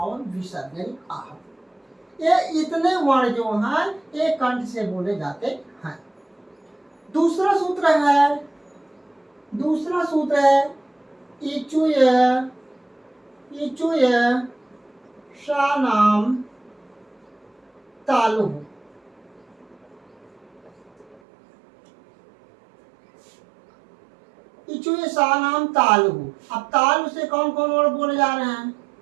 विसर्ग यानी आह। ये इतने वर्ण जो हैं ये कंठ से बोले जाते हैं। दूसरा सूत्र है इचुय शानाम तालु। इचुय शानाम तालु। अब तालु से कौन कौन वर्ड बोले जा रहे हैं?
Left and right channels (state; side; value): drops out; left; at 21.2 s